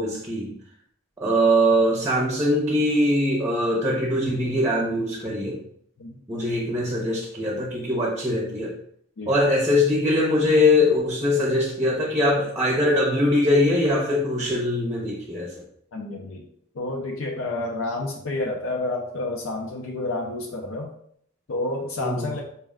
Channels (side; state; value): both; normal; correlation 0.47